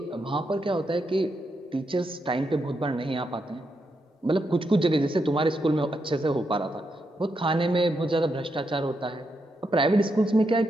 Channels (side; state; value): both; normal; correlation 0.82